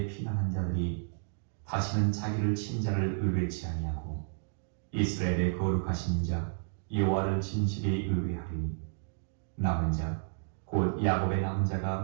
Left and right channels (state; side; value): silent; left; digital silence